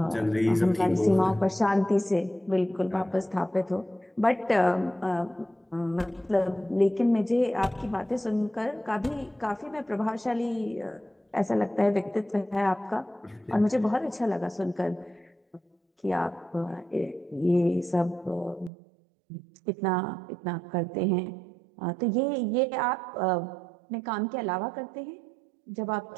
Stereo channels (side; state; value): left; drops out; at 18.7 s